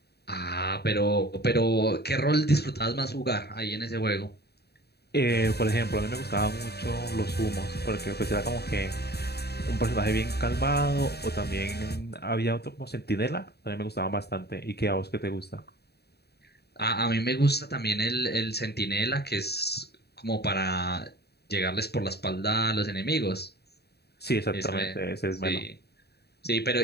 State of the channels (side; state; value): right; late; 0.47 ms